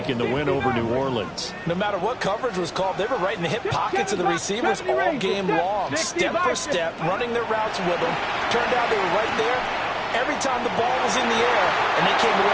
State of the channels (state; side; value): identical; both; correlation 1.00